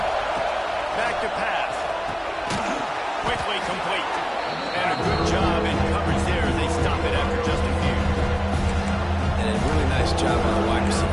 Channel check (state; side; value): identical; both; correlation 1.00